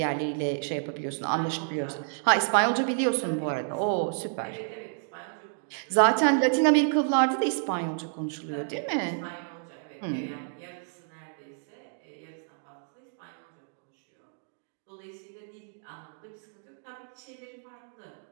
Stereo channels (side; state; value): left; silent; digital silence